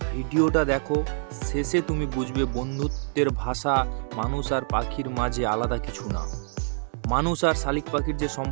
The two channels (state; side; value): silent; left; digital silence